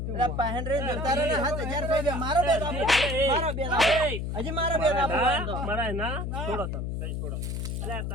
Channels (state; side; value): noise; left; hum, 3 dB below the sound